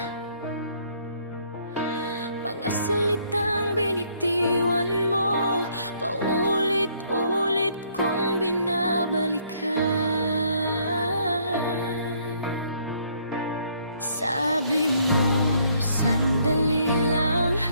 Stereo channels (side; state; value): both; inverted; correlation -0.66